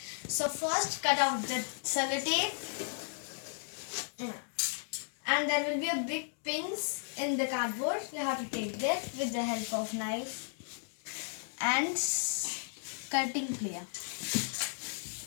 So first cut out the sellotape and there will be a big pins in the cardboard. You have to take that with the help of knife and cutting plier.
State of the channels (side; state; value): right; silent; digital silence